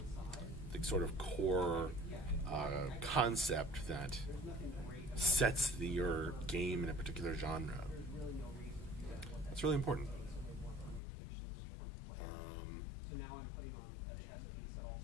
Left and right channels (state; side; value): drops out; right; at 11.0 s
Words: sort of core concept that sets your game in a particular genre. That's really important.